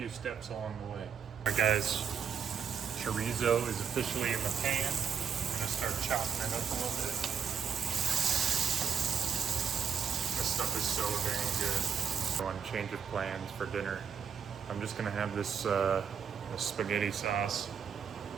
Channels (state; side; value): quieter; left; 7.2 dB